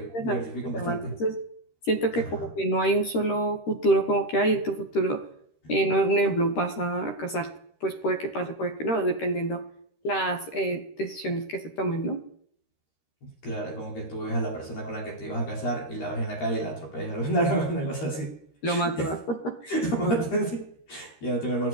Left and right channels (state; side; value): late; right; 13 ms